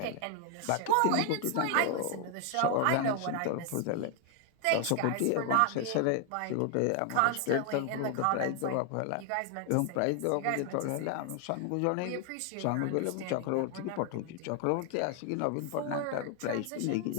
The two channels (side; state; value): both; different; correlation 0.00